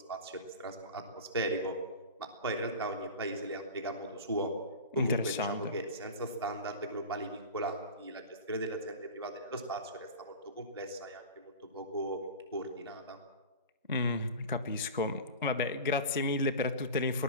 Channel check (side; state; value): both; inverted; correlation -0.31